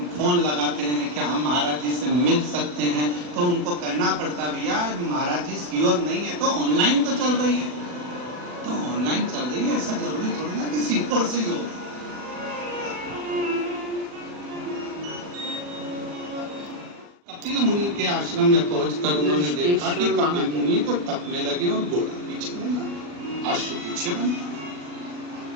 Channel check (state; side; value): late; left; 40 ms